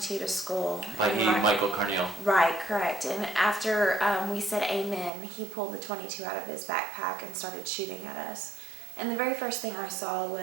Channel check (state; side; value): drops out; left; at 5.1 s